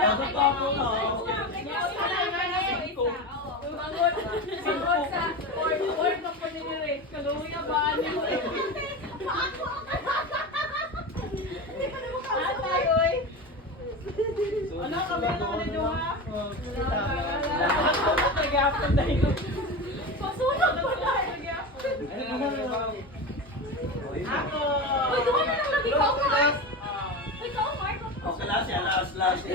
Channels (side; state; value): both; normal; correlation 0.24